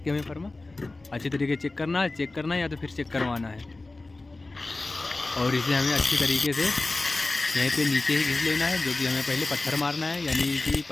के हमें फर्मा अच्छी तरीके चेक करना है या तो फिर चेक करवाना है। और इसे हमें अच्छी तरीके से यहीं पे नीचे ही घिस लेना है। जो कि हमें पहले पत्थर मारना है, यानी कि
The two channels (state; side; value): quieter; right; 3.2 dB